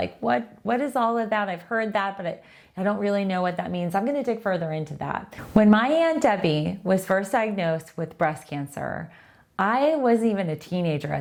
what is all of that? I've heard that, but I don't really know what that means. I'm going to dig further into that. When my Aunt Debbie was first diagnosed with breast cancer, I wasn't even a teenager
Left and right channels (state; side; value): identical; both; correlation 1.00